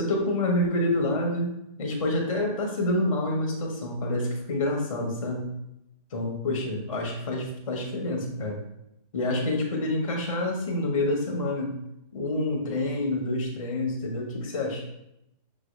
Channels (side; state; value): both; inverted; correlation -0.40